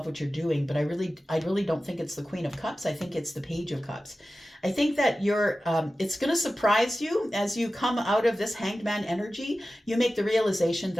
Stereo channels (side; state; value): both; normal; correlation 0.95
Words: what you're doing, but I really don't think it's the Queen of Cups. I think it's the Page of Cups. I think that it's going to surprise you as you come out of this Hanged Man energy. You make the realization